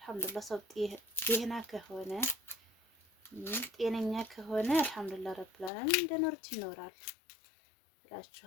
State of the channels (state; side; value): drops out; right; at 5.7 s